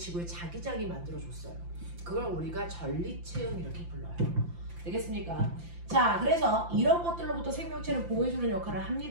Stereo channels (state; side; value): late; left; 5.8 ms